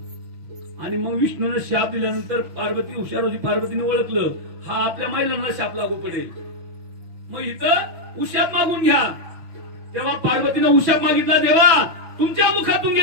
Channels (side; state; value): left; late; 6.1 ms